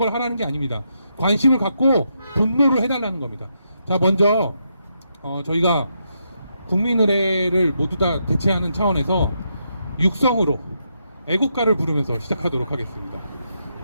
하라는 게 아닙니다. 관심을 갖고 분노를 해달라는 겁니다. 자, 먼저 저희가 국민의례를 모두 다 대체하는 차원에서 육성으로 애국가를 부르면서 시작하도록 하겠습니다.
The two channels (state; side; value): inverted; both; correlation -0.81